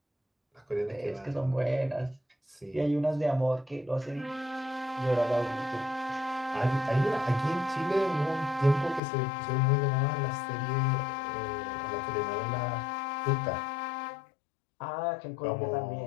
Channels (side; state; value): right; drops out; at 9.0 s